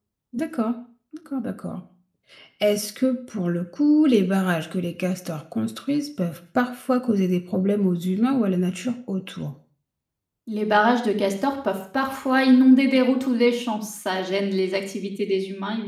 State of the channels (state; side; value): identical; both; correlation 1.00